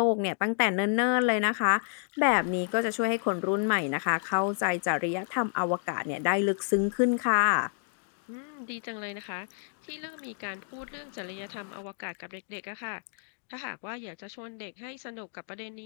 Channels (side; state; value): right; silent; digital silence